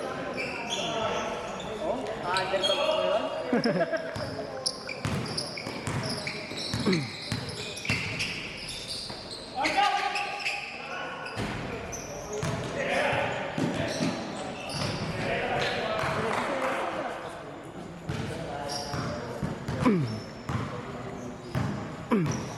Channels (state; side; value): identical; both; correlation 1.00